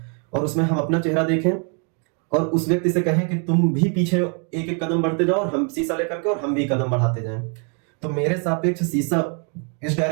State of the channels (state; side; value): quieter; left; 39.3 dB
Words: और उसमें हम अपना चेहरा देखें और उस व्यक्ति से कहें कि तुम भी पीछे एक एक कदम बढ़ते जाओ और हम शीशा लेकर के और हम भी कदम बढ़ाते जाएं, तो मेरे सापेक्ष शीशा इस